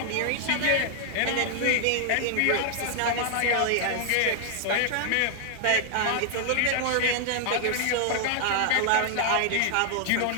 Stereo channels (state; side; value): different; both; correlation 0.00